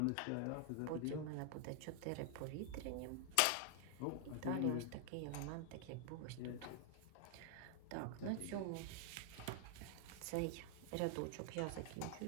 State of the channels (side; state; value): both; different; correlation 0.00